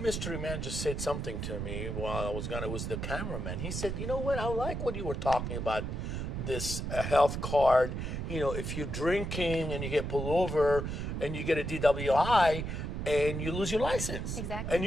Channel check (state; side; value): noise; right; rumble, 4 dB below the sound